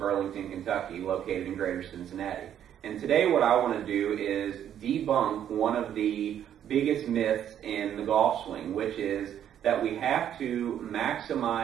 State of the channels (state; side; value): quieter; left; 10.0 dB